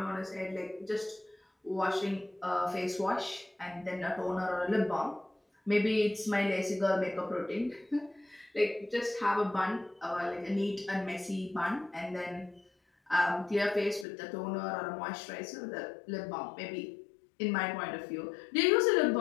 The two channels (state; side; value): drops out; right; at 14.1 s